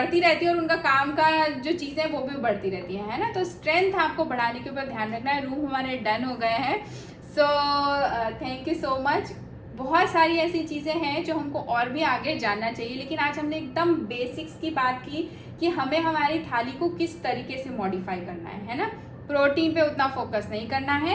रहती है और उनका काम का जो चीज़ें हैं वो भी बढ़ती रहती है ना। तो स्ट्रेंथ आपको बढ़ाने के ऊपर ध्यान रखना है। रूम हमारे डन हो गए हैं। सो थैंक यू सो मच। बहुत सारी ऐसी चीज़ें हैं जो हमको और भी आगे जानना चाहिए, लेकिन आज हमने एकदम बेसिक्स की बात की कि हमें हमारी थाली को किस तरीके से मॉडिफाई करना है ना। प्रोटीन पे उतना फोकस नहीं करना है,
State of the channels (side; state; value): both; identical; correlation 1.00